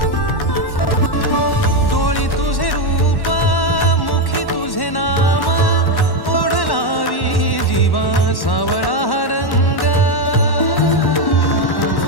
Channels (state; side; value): late; right; 1.1 ms